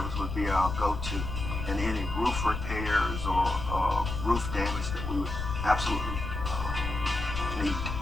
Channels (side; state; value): left; noise; rumble, 5 dB below the sound